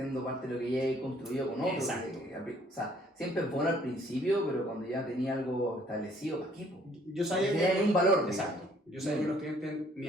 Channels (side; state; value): both; normal; correlation 0.61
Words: parte de lo que ya he construido con otros. Exacto. O sea, siempre es bueno al principio, pero cuando ya tenía algo establecido, ¿para qué? Yo sabía que tenía un valor. Exacto. Yo sabía que los clientes me